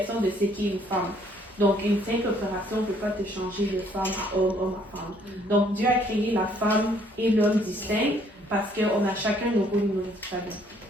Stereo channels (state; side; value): normal; both; correlation 0.64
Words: de ce qu'est une femme. Donc, une simple opération ne peut pas te changer de femme à homme, homme à femme. Donc, Dieu a créé la femme et l'homme distincts parce qu'on a chacun nos rôles, nos responsabilités.